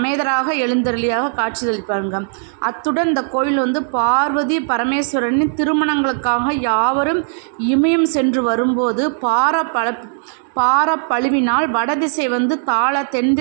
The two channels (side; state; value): left; silent; digital silence